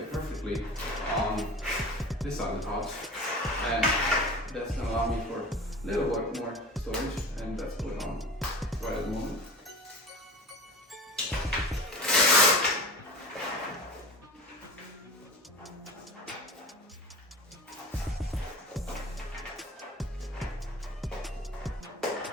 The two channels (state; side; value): normal; both; correlation 0.36